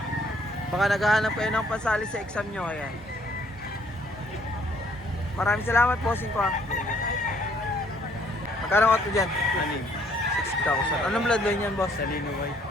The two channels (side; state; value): both; normal; correlation 0.64